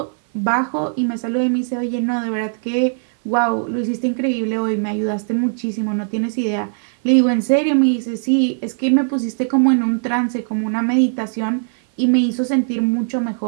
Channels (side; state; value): left; silent; 59 dB below the other